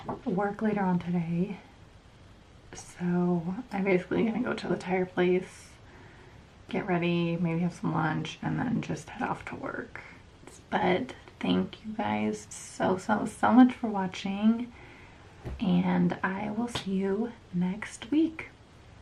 work later on today, so I'm basically gonna go to the tire place, get ready, maybe have some lunch, and then just head off to work. But thank you guys so much for watching, and I will see you next week.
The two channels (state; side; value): identical; both; correlation 1.00